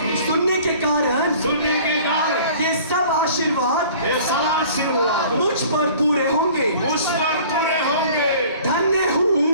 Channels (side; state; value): both; inverted; correlation -0.48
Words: सुनने के कारण ये सब आशीर्वाद मुझ पर पूरे होंगे। धन्य हूँ